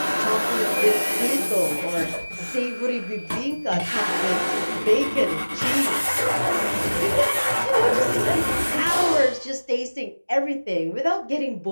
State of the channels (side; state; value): both; inverted; correlation -1.00